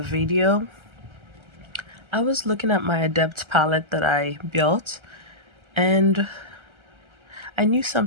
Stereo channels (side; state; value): left; late; 1.3 ms